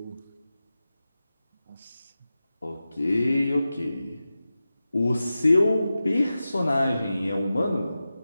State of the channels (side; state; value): both; inverted; correlation -0.94